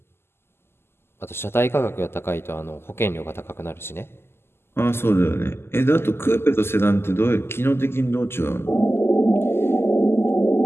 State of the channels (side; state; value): right; late; 0.12 ms